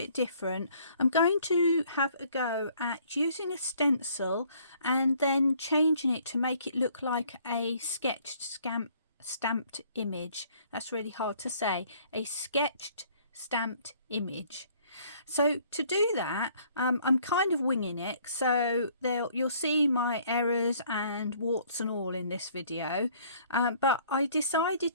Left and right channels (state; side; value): inverted; both; correlation -0.60